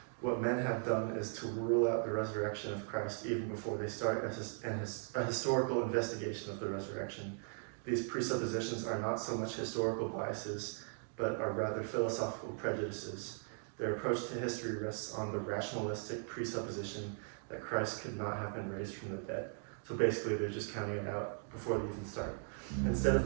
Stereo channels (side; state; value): left; silent; 52 dB below the other